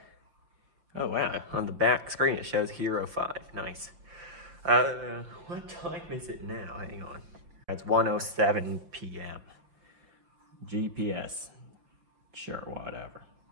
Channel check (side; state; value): left; late; 5.8 ms